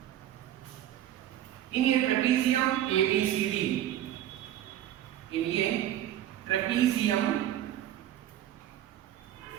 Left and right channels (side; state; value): left; quieter; 12.0 dB